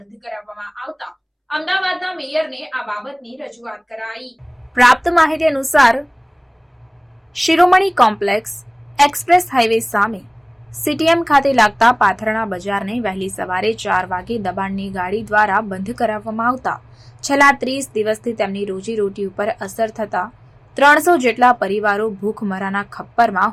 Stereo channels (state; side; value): identical; both; correlation 1.00